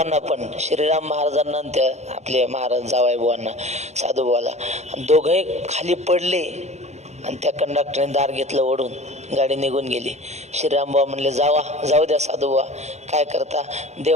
पण, श्रीराम महाराजांना आणि त्या आपले महाराज जावाईबुवांना साधूबुवाला. आणि दोघंही खाली पडले आणि त्या कंडक्टरने दार घेतलं ओढून. गाडी निघून गेली. श्रीरामबुवा म्हणले जाऊ द्या साधूबुवा, काय करता,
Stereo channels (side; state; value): left; late; 0.33 ms